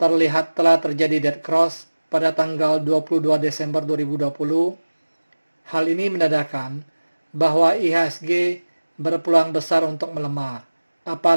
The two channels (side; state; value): both; inverted; correlation -1.00